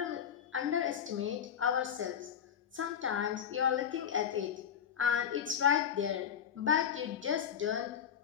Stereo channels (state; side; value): quieter; right; 8.5 dB